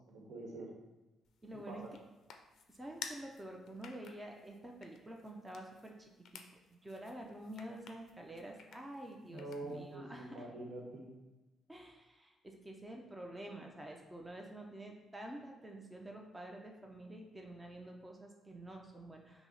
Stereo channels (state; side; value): normal; both; correlation 0.77